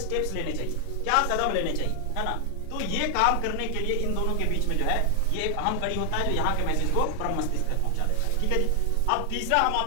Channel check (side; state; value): both; different; correlation 0.00